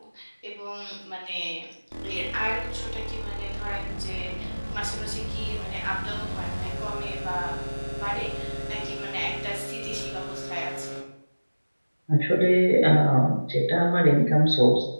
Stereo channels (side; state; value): both; inverted; correlation -1.00